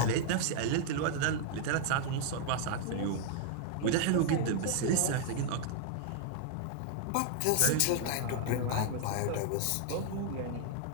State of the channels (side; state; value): both; different; correlation 0.00